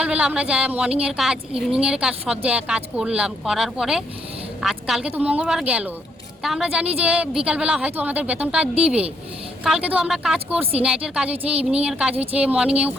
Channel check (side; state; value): both; normal; correlation 0.73